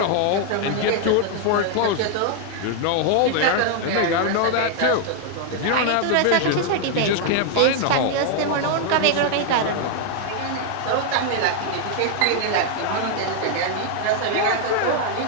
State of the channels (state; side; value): different; both; correlation 0.00